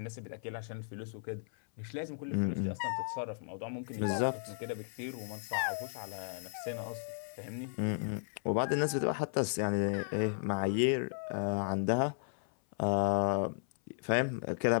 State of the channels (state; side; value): silent; right; 54 dB below the other